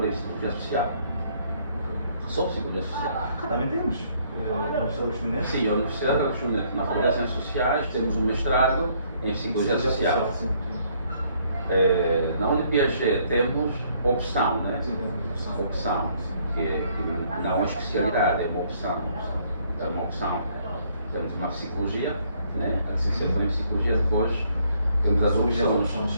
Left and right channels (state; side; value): inverted; both; correlation -0.66